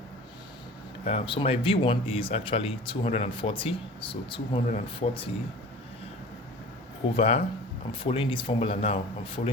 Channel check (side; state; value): both; normal; correlation 0.41